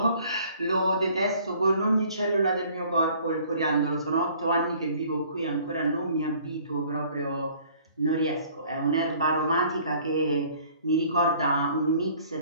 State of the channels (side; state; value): both; inverted; correlation -0.55